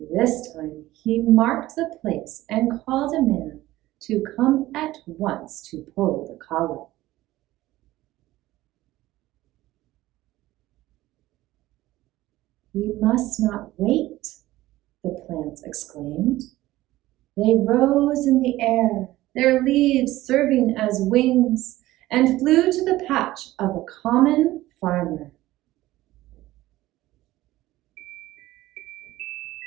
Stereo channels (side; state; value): left; quieter; 16.5 dB